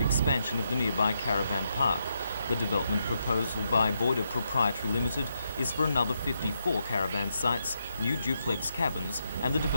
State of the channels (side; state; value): both; inverted; correlation -0.82